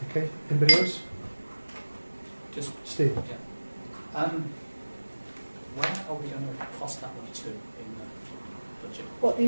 Okay. Anybody else? Just Steve. yeah. Where are we going to cost that one to in the budget? What, the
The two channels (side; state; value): both; inverted; correlation -1.00